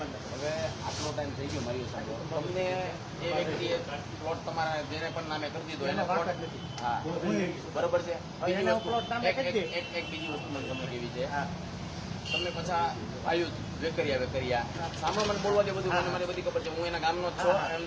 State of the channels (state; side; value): identical; both; correlation 1.00